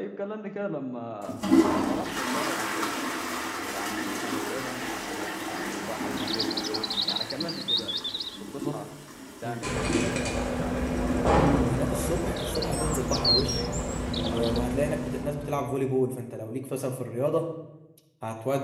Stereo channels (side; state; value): both; identical; correlation 1.00